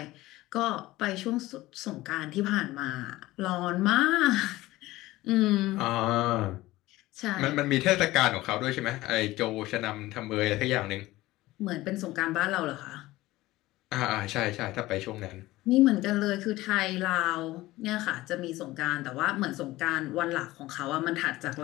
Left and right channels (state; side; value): quieter; right; 17.9 dB